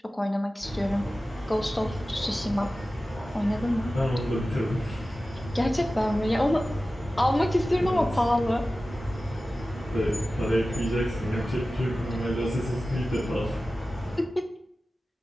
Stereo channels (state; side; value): normal; both; correlation 0.95